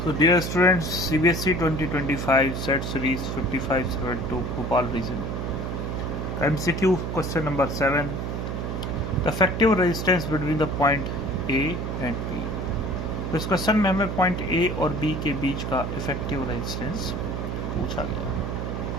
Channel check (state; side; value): noise; right; hum, 3 dB below the sound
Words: So dear students, CBSE 2025 set series 5572 Bhopal region. MCQ question number 7. The effective resistance between the point A and B. तो इस question में हमें point A और B के बीच का effective resistance पूछा गया।